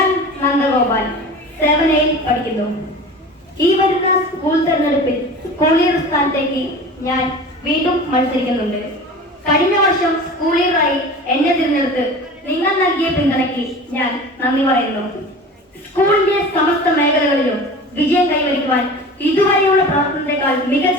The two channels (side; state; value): both; normal; correlation 0.36